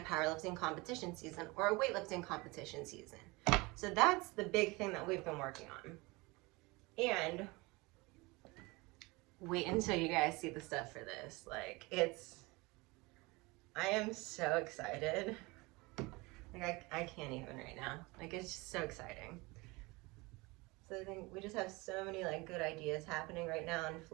powerlifting competition season or a weightlifting competition season. So that's the big thing that we've been working on. And wait until you guys see the stuff for this. Like, I am so excited. Like, I can't even right now. Like, it's just so exciting. So I think we just have so many like good ideas happening right now and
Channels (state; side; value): quieter; left; 24.3 dB